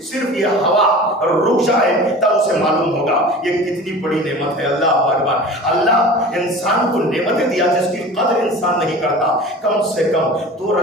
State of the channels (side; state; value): both; normal; correlation 0.38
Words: صرف یہ ہوا رک جائے تب اسے معلوم ہوگا یہ کتنی بڑی نعمت ہے۔ اللہ اکبر، اللہ انسان کو نعمتیں دیا جس کی قدر انسان نہیں کرتا۔ کم سے کم 2